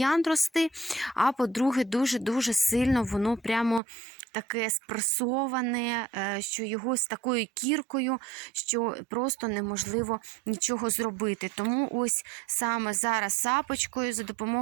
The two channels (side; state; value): left; drops out; at 3.8 s